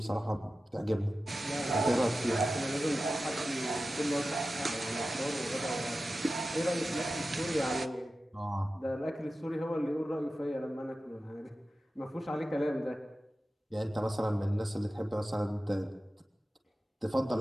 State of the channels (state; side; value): normal; both; correlation 0.94